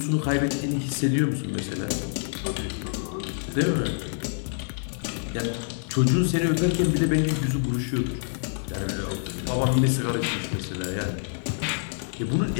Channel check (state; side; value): silent; right; 58 dB below the other